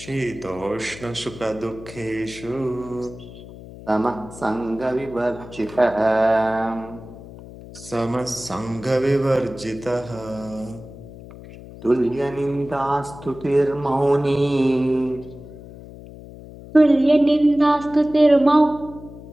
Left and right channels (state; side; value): noise; left; hum, 16 dB below the sound